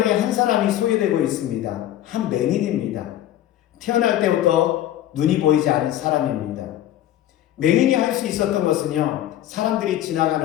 한 사람이 소개되고 있습니다. 한 맹인입니다. 태어날 때부터 눈이 보이지 않은 사람입니다. 맹인이 할 수 있었던 것은요, 사람들이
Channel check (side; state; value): right; quieter; 12.7 dB